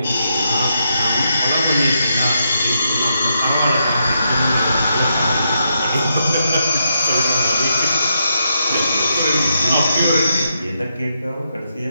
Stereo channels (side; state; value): both; inverted; correlation -0.81